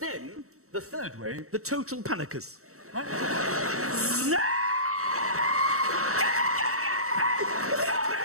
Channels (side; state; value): left; late; 0.64 ms